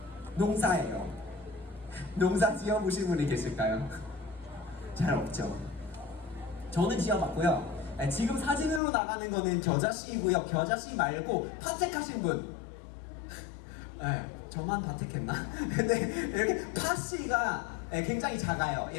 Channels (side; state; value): right; drops out; at 8.8 s